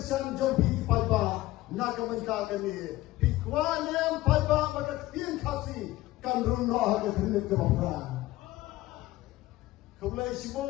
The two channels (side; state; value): right; quieter; 17.1 dB